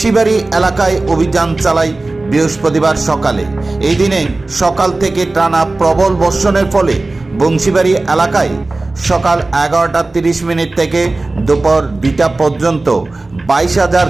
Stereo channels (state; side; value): quieter; left; 3.2 dB